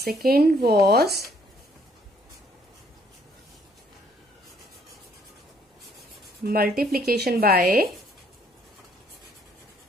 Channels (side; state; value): both; normal; correlation 0.65